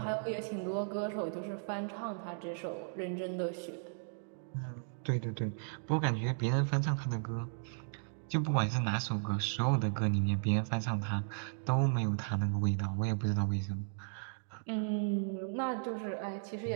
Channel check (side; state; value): left; silent; digital silence